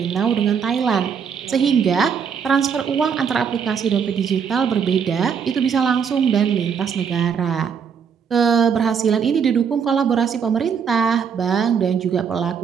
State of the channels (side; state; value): left; quieter; 6.9 dB